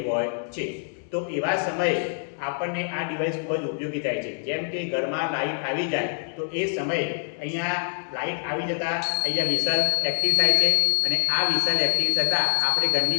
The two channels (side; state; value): right; silent; digital silence